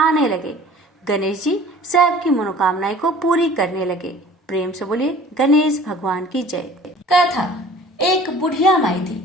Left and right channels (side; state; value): both; normal; correlation 0.48